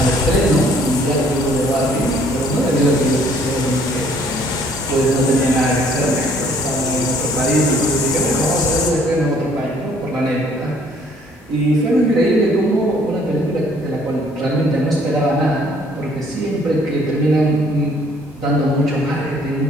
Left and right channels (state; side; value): normal; both; correlation 0.61